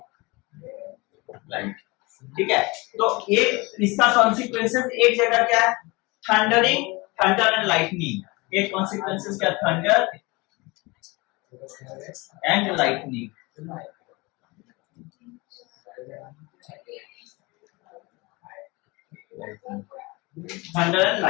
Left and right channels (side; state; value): right; quieter; 24.8 dB